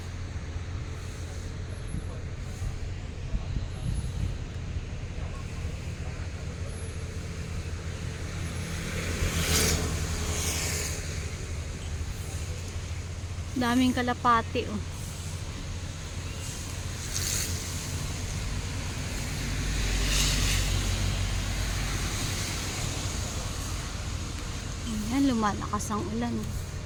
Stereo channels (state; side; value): identical; both; correlation 1.00